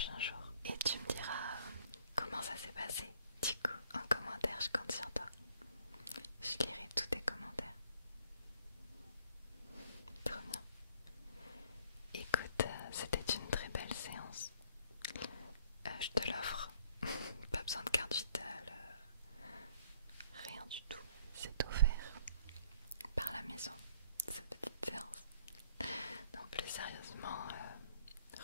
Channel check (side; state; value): both; inverted; correlation -0.62